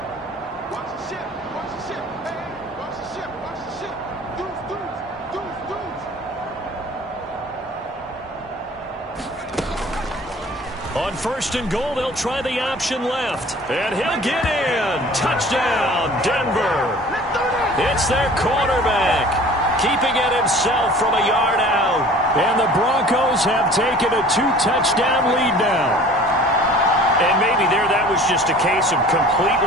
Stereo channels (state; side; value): normal; both; correlation 0.47